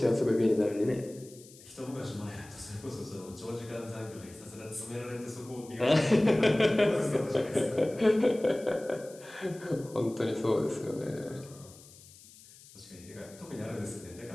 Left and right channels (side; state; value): left; noise; hiss, 21 dB below the sound